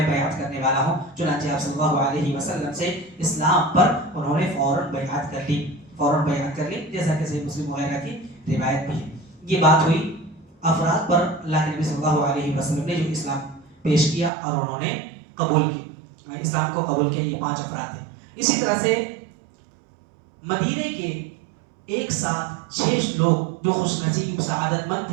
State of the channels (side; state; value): left; drops out; at 14.3 s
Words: بیعت کرنے والا ہوں. چنانچہ آپ صلی اللہ علیہ وسلم سے اسلام پر انہوں نے فوراً بیعت کر لی، جیسا کہ صحیح مسلم وغیرہ کی روایت بھی ہے. یہ بات ہوئی افراد پر اللہ کے نبی صلی اللہ علیہ وسلم نے جو اسلام پیش کیا اور انہوں نے قبول کی، اسلام کو قبول کیا. یہ 5 افراد ہیں. اسی طرح سے مدینے کے ایک ساتھ 6 لوگ جو خوش نصیب سعادت مند